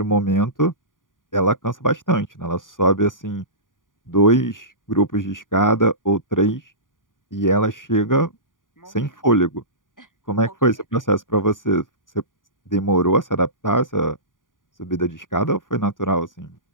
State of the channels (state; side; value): late; right; 0.89 ms